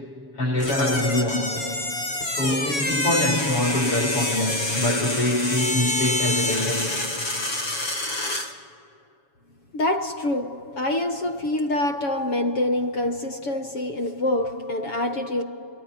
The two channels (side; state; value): right; late; 7.1 ms